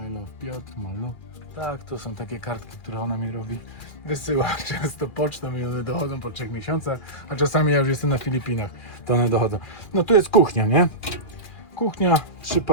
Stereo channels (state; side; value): late; right; 2.4 ms